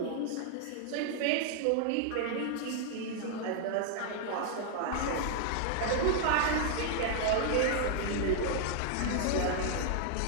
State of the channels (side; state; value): both; different; correlation -0.01